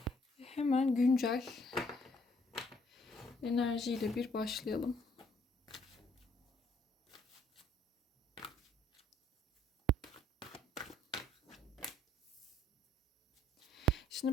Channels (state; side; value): normal; both; correlation 0.65